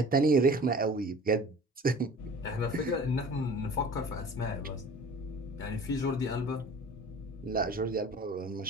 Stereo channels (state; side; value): normal; both; correlation 0.43